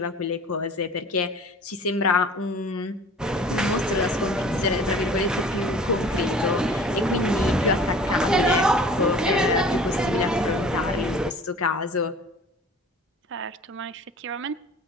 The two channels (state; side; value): normal; both; correlation 0.46